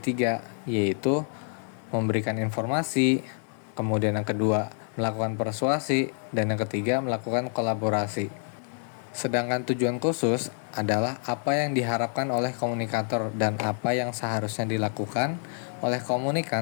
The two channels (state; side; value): silent; right; 60 dB below the other